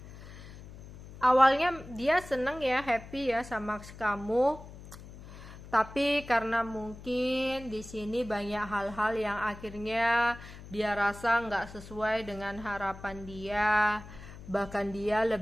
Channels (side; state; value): left; noise; hum, 16 dB below the sound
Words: Awalnya dia seneng ya, happy ya sama kamu. Tapi karena mungkin di sini banyak hal-hal yang akhirnya dia rasa nggak sesuai dengan harapan dia, bahkan dia